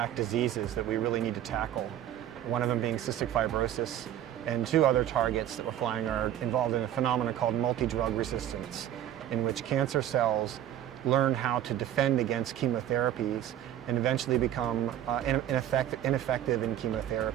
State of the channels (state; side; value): quieter; left; 11.4 dB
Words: diseases that we really need to tackle. One of them being cystic fibrosis, and two other targets that we're flying are involved in a phenomenon called multi-drug resistance, in which cancer cells learn how to defend against chemotherapies and eventually become ineffective in